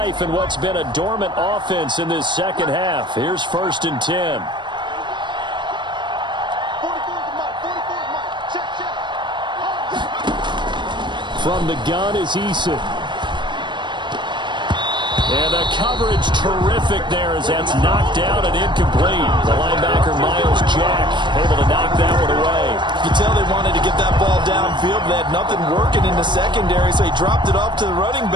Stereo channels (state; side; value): late; left; 0.22 ms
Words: in what's been a dormant offense in this second half. Here's first and 10. From the gun is Eason. And the coverage terrific there as that's knocked out and incomplete. The linebacker, Miles Jack, able to knock that one away. You tell they wanted to get that ball downfield, but they had nothing working in the secondary, so he dropped it off to the running